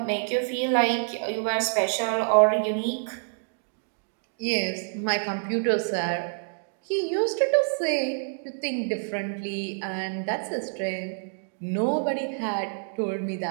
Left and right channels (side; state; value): left; silent; digital silence